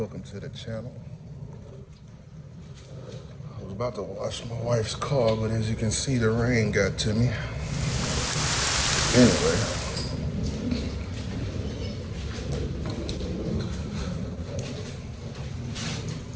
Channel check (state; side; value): identical; both; correlation 1.00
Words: to the channel. I was about to wash my wife's car, but as you can see, the rain got to me. Anyway,